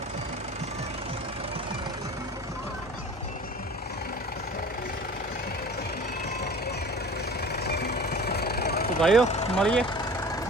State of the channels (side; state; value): both; normal; correlation 0.41